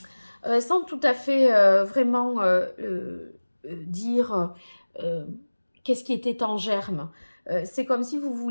sans tout à fait vraiment dire qu'est-ce qui était en germe. C'est comme si vous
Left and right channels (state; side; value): inverted; both; correlation -1.00